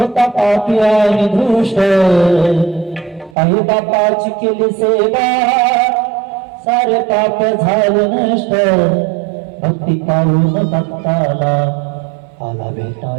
पापी आणि दृष्ट, आई बापाची केली सेवा सारे पाप झाले नष्ट. भक्ती पाहून भक्ताला आला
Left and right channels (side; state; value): left; drops out; at 3.4 s